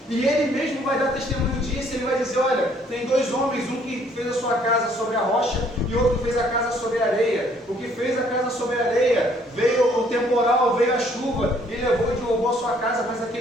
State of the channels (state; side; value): normal; both; correlation 0.63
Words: E Ele mesmo vai dar testemunho disso. Ele vai dizer, olha, tem dois homens, um que fez a sua casa sobre a rocha e outro que fez a casa sobre a areia. O que fez a casa sobre a areia, veio o temporal, veio a chuva e levou e derrubou a sua casa, mas